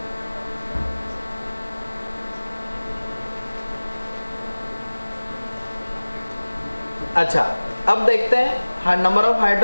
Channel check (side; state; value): both; inverted; correlation -1.00